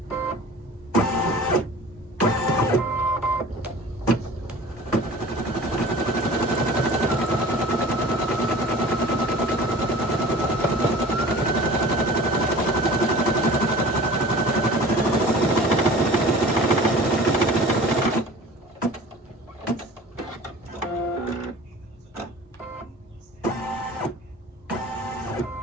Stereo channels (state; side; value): normal; both; correlation 0.42